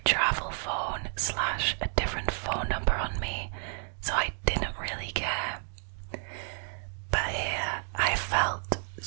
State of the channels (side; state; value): left; silent; 57 dB below the other